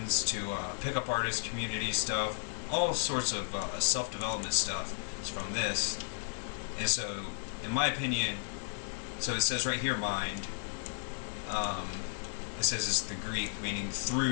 to pickup artist community stuff, all sorts of self-development stuff is from this. And so, in my opinion, so it says right here, mind. It says it's the Greek, meaning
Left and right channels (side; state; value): right; silent; 55 dB below the other